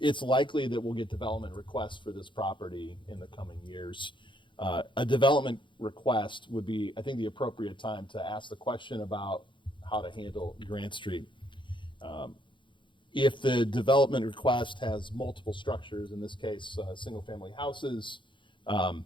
It's likely that we'll get development requests for this property in the coming years. A development request would be, I think, the appropriate time to ask the question about how to handle Grant Street. If the development request has multiple structures, in this case, single-family houses,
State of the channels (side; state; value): right; late; 0.23 ms